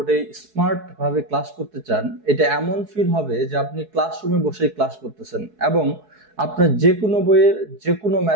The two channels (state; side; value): late; left; 4.7 ms